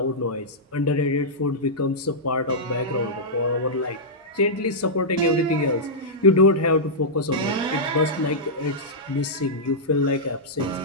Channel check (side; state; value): both; normal; correlation -0.11